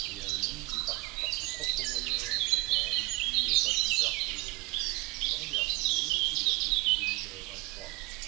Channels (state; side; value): quieter; left; 25.7 dB